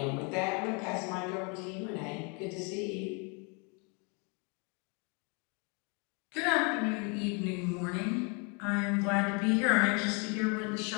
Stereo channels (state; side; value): quieter; right; 33.7 dB